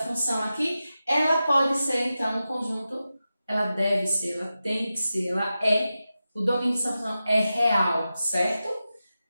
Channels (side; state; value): both; inverted; correlation -0.93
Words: aqui, ela pode ser, então, um conjunto, ela deve ser, ela tem que ser, ela é, o domínio dessa função é real, certo?